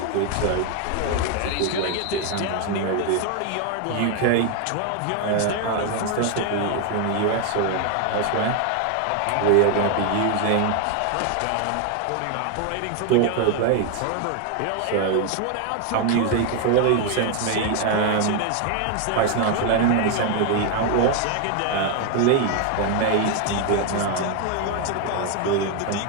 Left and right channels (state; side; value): different; both; correlation 0.01